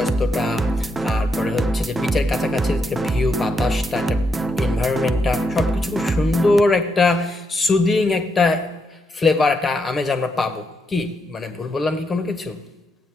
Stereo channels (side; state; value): both; normal; correlation 0.81